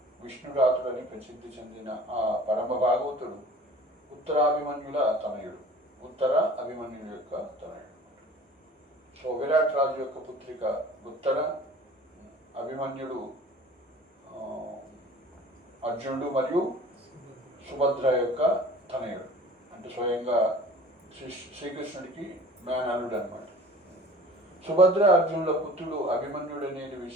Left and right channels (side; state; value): both; normal; correlation 0.45